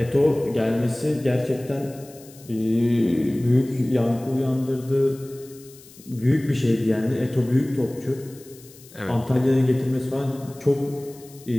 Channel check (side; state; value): left; noise; hiss, 22 dB below the sound